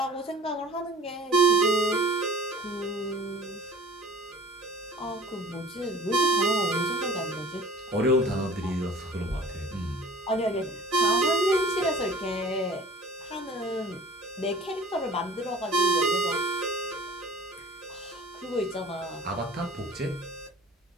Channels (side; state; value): both; normal; correlation 0.46